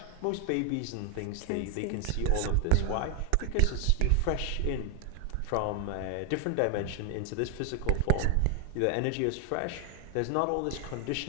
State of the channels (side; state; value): both; different; correlation 0.00